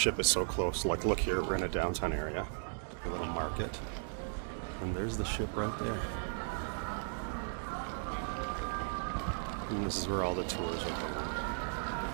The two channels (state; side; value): silent; left; digital silence